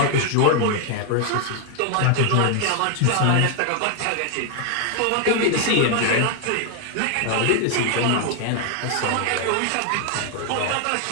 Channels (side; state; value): both; different; correlation 0.00